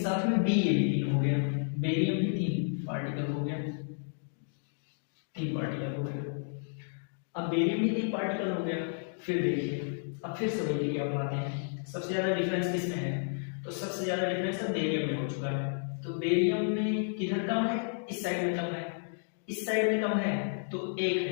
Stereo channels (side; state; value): right; silent; digital silence